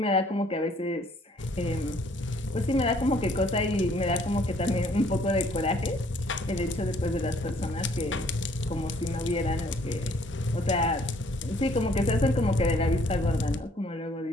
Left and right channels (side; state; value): both; normal; correlation 0.62